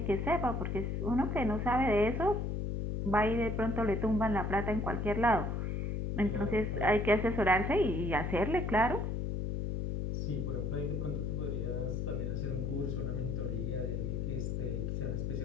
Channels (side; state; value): left; noise; hum, 1 dB below the sound